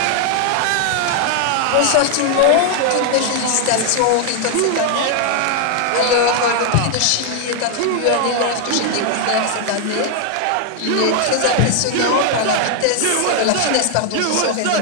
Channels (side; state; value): both; different; correlation 0.00